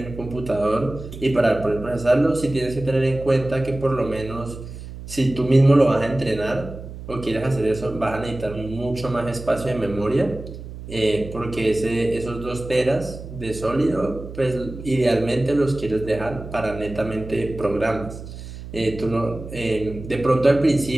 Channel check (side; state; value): right; noise; hum, 12 dB below the sound